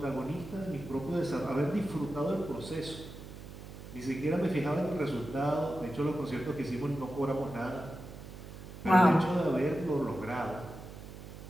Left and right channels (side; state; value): right; noise; hum, 13 dB below the sound